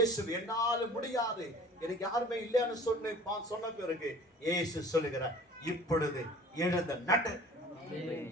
என்னால முடியாது, எனக்கு யாருமே இல்லைன்னு சொன்ன பிறகு இயேசு சொல்லுகிறார், இப்பொழுது எழுந்த நடு,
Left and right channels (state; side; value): normal; both; correlation 0.45